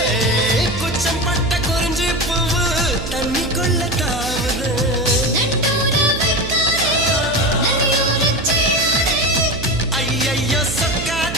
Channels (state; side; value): noise; right; hum, 8 dB below the sound